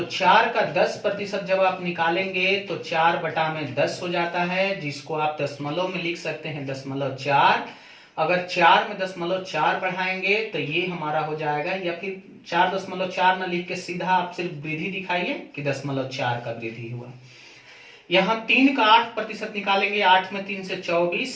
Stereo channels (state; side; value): identical; both; correlation 1.00